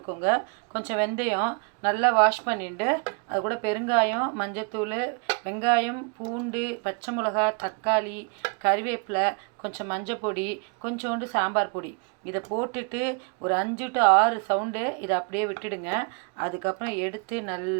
கொஞ்சம் வெந்தயம் நல்லா வாஷ் பண்ணிவிட்டு அது கூட பெருங்காயம், மஞ்சத்தூள், வெங்காயம், பூண்டு, பச்சை மிளகா, தக்காளி, கறிவேப்பிலை, கொஞ்சம் மஞ்சள் பொடி, கொஞ்சோண்டு சாம்பார் பொடி, இதை போட்டுட்டு ஒரு 5 to 6 சவுண்டு இதை அப்படியே விட்டுடுங்க. அதுக்கப்புறம் எடுத்து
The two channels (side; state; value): left; quieter; 36.3 dB